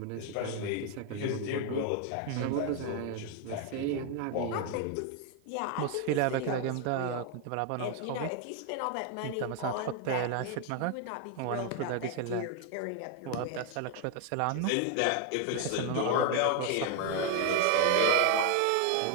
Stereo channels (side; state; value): both; different; correlation 0.00